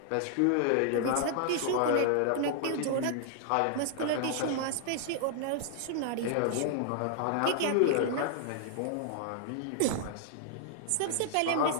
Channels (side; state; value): both; different; correlation -0.01